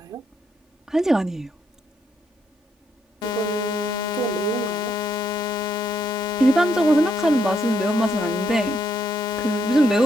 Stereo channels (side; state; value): both; normal; correlation 0.76